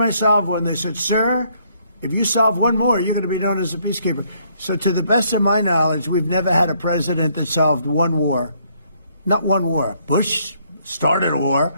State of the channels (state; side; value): inverted; both; correlation -0.68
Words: I solve one, they said, sir, if you solve one more, you're going to be known as a peacekeeper. So to the best of my knowledge, we've never had a president that solved one war. Not one war. Bush started a war.